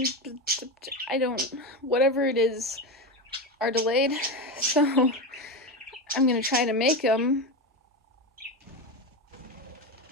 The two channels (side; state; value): both; normal; correlation 0.17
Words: whatever it is, are delayed, so I'm gonna try to make them.